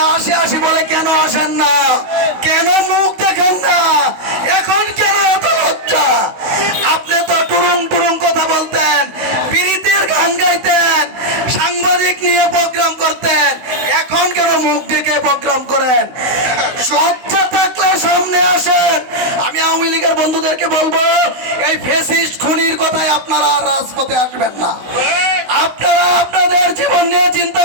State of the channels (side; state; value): left; late; 16 ms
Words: আসি বলে কেন আসেন না? কেন মুখ দেখেন না? এখন কেন এত লজ্জা? আপনি তো টুরুং টুরুং কথা বলতেন, প্রীতির গান গাইতেন, সাংবাদিক নিয়ে প্রোগ্রাম করতেন, এখন কেন মুখ ডেকে প্রোগ্রাম করেন? লজ্জা থাকলে সামনে আসেন। আমি আওয়ামী লীগের বন্ধুদেরকে বলবো, এই ফ্যাসিস্ট খুনির কথায় আপনারা আর রাজপথে আসবেন না। আপনারা আপনাদের জীবন নিয়ে চিন্তা